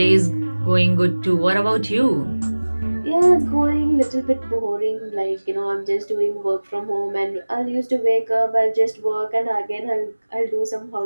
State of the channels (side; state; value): both; inverted; correlation -1.00